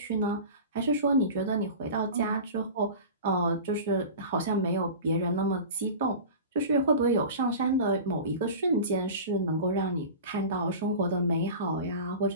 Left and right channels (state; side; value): inverted; both; correlation -0.34